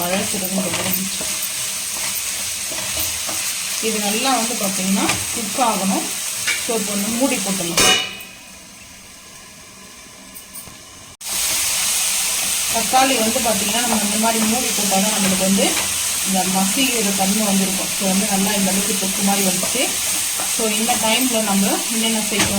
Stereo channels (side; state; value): both; identical; correlation 1.00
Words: முடிஞ்சிச்சு. இது நல்லா வந்து பார்த்தீங்கன்னா குக் ஆகணும். ஸோ இப்போ வந்து மூடி போட்டுடலாம். தக்காளி வந்து பார்த்தீங்கன்னா நம்ம இந்த மாதிரி மூடி போட்டால் தான் நம்மளுக்கு வந்து இந்த மசிக்கிற தன்மை வந்துருக்கும். ஸோ வந்து நல்லா இந்த அளவுக்கு தொக்கு மாதிரி வந்துச்சு. ஸோ இந்த டைமில் நம்ம என்னென்ன